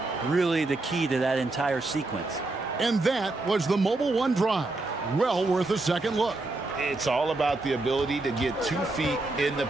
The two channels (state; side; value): quieter; left; 3.1 dB